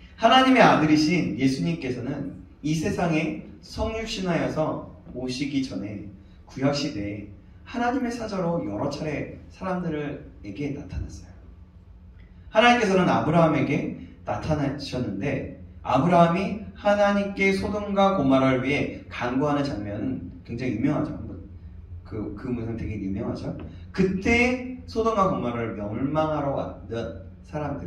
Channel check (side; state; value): both; identical; correlation 1.00